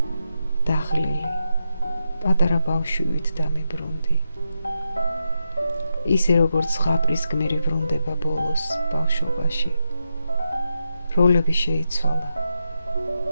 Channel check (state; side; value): inverted; both; correlation -0.85